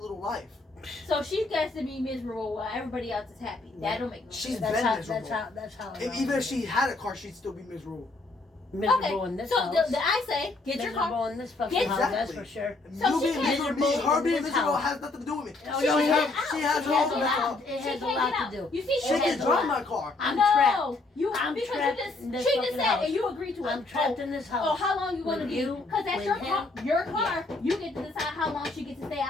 life. So she gets to be miserable while everybody else is happy. That don't make no She's sense. That's been how. miserable. That's how. If, even if she had a car, she'd still be miserable. miserable in this so house. I say, get your miserable car. in this fucking Get- house. That's Exactly. for sure. So You she being can't- miserable, miserable her in being this miserable house. has nothing to do with me. No, She no, can't it get has, out. She She has it her has own a car. lot. It She has a can't lot get out. to do. You see, She It can has a drive lot. my car. I'm no, trapped. you I'm because trapped you just in this she just fucking said house. and you agreed to it. I'm trapped in this house. Oh, how long you want to With be? you, Because that's with your him. car. Your car. You get to decide how long she gets to stay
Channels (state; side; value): quieter; right; 3.3 dB